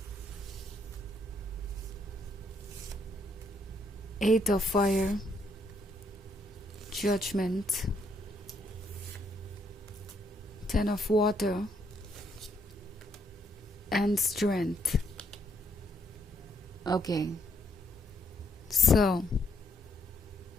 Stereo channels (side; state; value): both; normal; correlation 0.72